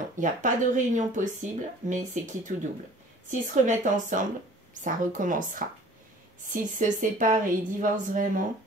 il n'y a pas de réunion possible, mais c'est quitte ou double. S'ils se remettent ensemble, ça recommencera. S'ils se séparent et ils divorcent vraiment,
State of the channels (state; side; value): normal; both; correlation 0.49